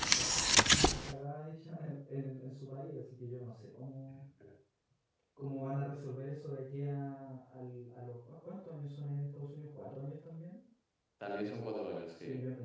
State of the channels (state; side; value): identical; both; correlation 1.00